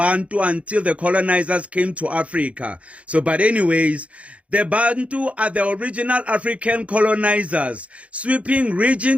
until the colonizers came to Africa. But anyways, the Bantu are the original African colonizers, sweeping region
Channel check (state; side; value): late; left; 0.064 ms